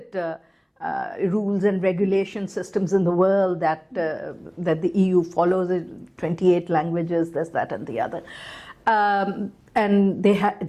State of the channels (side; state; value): both; identical; correlation 1.00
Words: rules and regulation systems in the world that the EU follows. 28 languages, this, that, and the other, and they